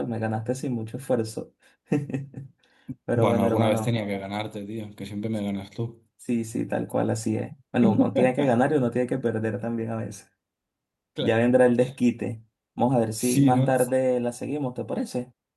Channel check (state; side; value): identical; both; correlation 1.00